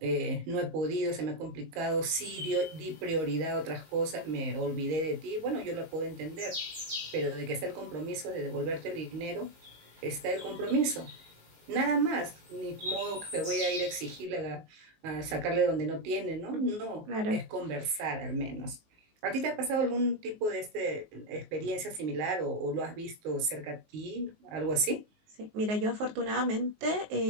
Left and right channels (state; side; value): late; left; 19 ms